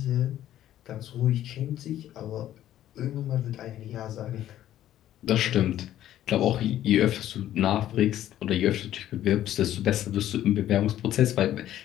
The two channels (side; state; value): right; quieter; 12.4 dB